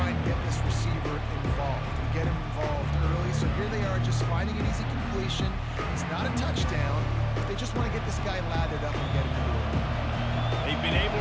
and get this receiver involved. and get him involved early. So here they are just finding an easy completion. It's not a touchdown, but they just want to get this guy lathered up and get him into it. They've been able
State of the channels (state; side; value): identical; both; correlation 1.00